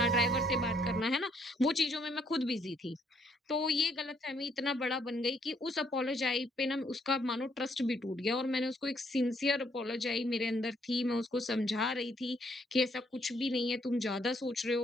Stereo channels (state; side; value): normal; both; correlation 0.70